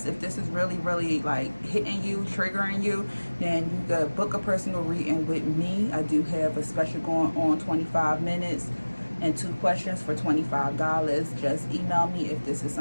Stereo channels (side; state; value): both; inverted; correlation -1.00